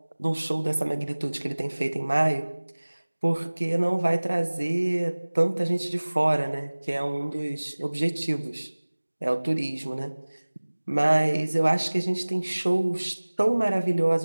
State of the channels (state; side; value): inverted; both; correlation -1.00